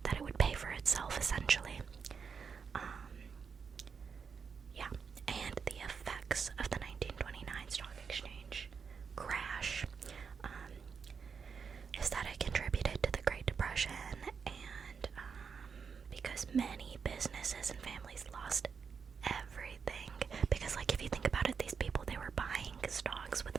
that it would pay for itself essentially. Yeah, and the effects of the 1929 stock exchange crash is that it contributed to the Great Depression, and because many businesses and families lost everything. Because like if you think about it, these people, they were buying stocks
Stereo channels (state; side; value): quieter; left; 6.0 dB